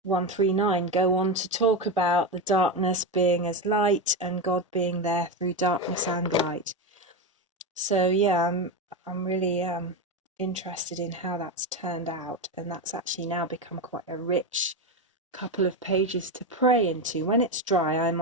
139 go on to talk about the darkness being as light and God being there through darkness and light. So yeah, I'm really interested in how that's turned out, and that's actually now become quite a rich couple of pages to pray into. When it's dry, I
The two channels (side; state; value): both; normal; correlation 0.14